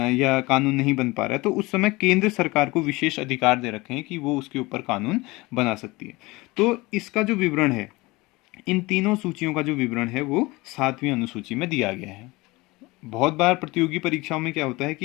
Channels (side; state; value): right; quieter; 22.3 dB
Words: या कानून नहीं बन पा रहा है, तो उस समय केंद्र सरकार को विशेष अधिकार दे रखे हैं कि वो उसके ऊपर कानून बना सकती है। तो इसका जो विवरण है, इन तीनों सूचियों का जो विवरण है वो 7वीं अनुसूची में दिया गया है। बहुत बार प्रतियोगी परीक्षाओं में क्या होता है